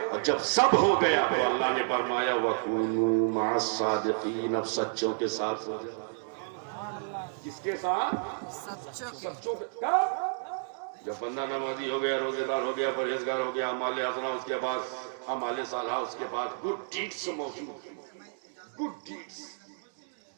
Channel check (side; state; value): left; silent; digital silence